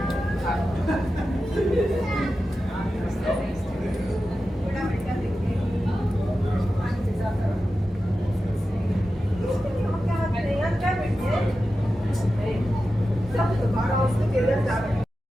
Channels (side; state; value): both; normal; correlation 0.92